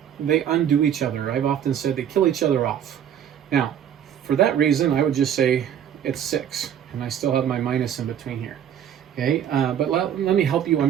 They undo each other. I've often said they kill each other off. Now, for that reason, I would just say it's 6, and I still have my minus in between here. Okay, but let me help you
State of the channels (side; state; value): left; quieter; 9.4 dB